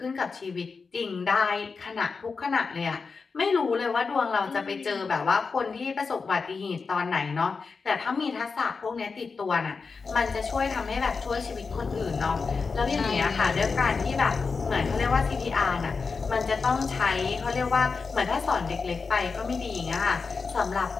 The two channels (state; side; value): quieter; right; 4.8 dB